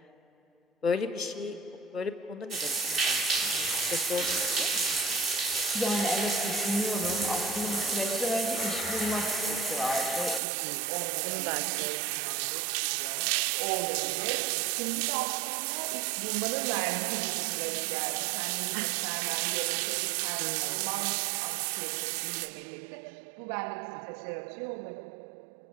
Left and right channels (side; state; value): left; drops out; at 10.4 s